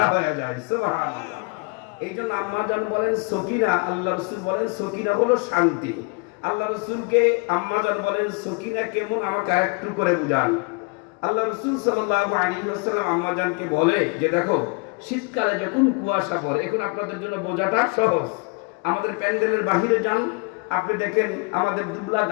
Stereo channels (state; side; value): quieter; right; 33.4 dB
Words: হয়ে যায়। সুবহানাল্লাহ। এই জন্য আম্মা জান বলেন সকিনা, আল্লাহ রাসূল বলেন সকিনা হলো শান্তি। আল্লাহ রাসূলকে আম্মা জান বলেন সকিনা কেমন, আমাকে আরেকটু করে বুঝান। আল্লাহ রাসূল সাল্লাল্লাহু আলাইহি ওয়াসাল্লাম আম্মা জানকে বলে যে দেখো, শীতকালে যখন কুয়াশা পড়ে, এখন আপনাদের জন্য বোঝাটা সহজ। আমাদের প্যান্ডেলের বাহিরে যান, আপনি দেখেন আমাদের দুবলা